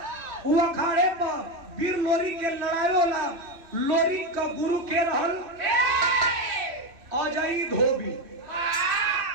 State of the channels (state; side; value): late; left; 3.1 ms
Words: वो अखाड़े पर वीर लोरी के लड़ाई होला। लोरी का गुरु के रहल अजय धोबी,